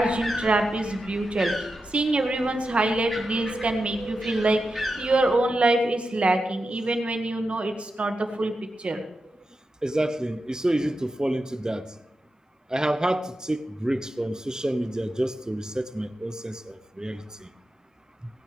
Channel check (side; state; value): both; normal; correlation 0.89